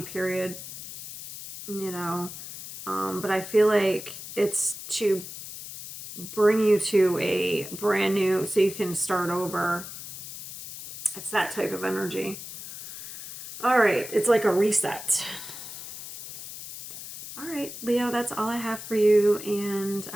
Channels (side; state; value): left; noise; hiss, 11 dB below the sound